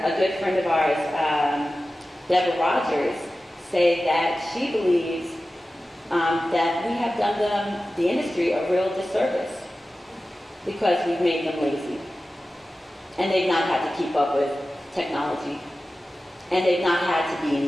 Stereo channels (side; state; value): both; normal; correlation 0.95